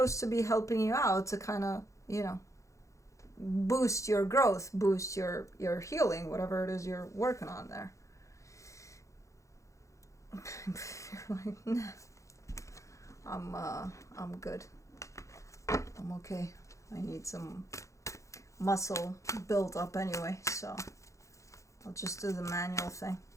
to be helping you out to kind of, you know, boost your growth, boost your healing, whatever it is you're working on there. You're like, nah, I'm good. I'm okay. I need some muscle built up anyway, so I'll just do the manual thing.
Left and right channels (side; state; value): right; late; 0.15 ms